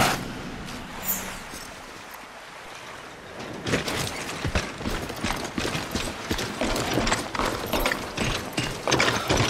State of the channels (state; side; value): identical; both; correlation 1.00